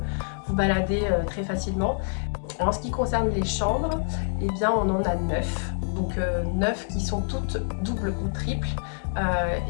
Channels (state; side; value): silent; right; 61 dB below the other